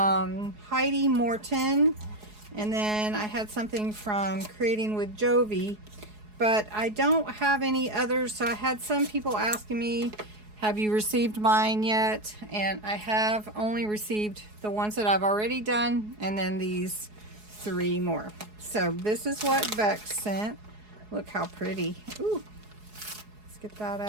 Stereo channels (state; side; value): late; left; 4.7 ms